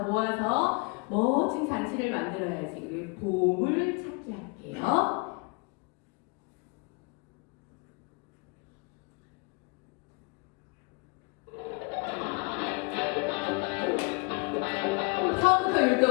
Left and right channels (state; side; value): quieter; right; 31.4 dB